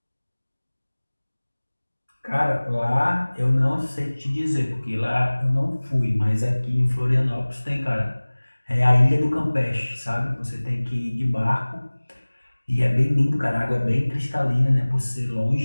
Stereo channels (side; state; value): both; inverted; correlation -1.00